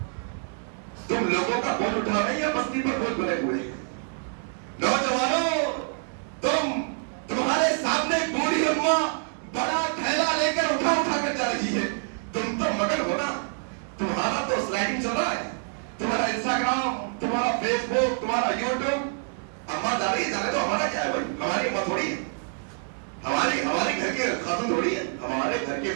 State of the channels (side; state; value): left; silent; 59 dB below the other